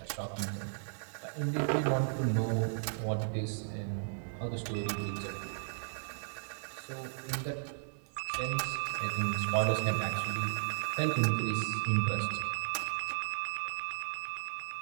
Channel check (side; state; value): left; silent; digital silence